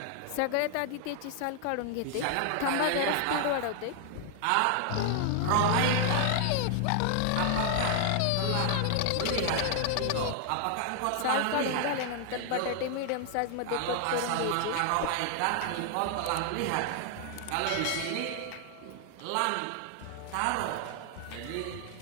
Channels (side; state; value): both; different; correlation 0.00